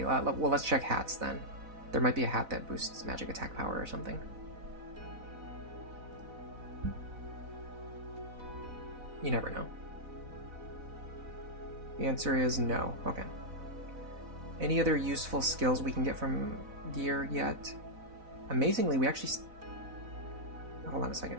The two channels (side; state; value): left; late; 4.0 ms